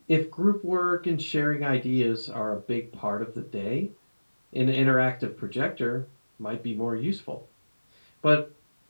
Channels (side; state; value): both; inverted; correlation -1.00